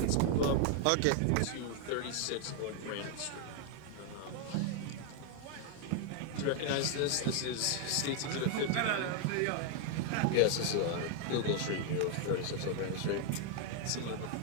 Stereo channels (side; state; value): both; different; correlation 0.00